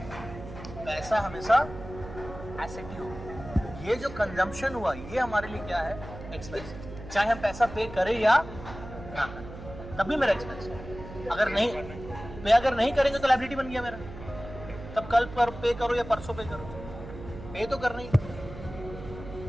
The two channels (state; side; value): noise; right; hum, 13 dB below the sound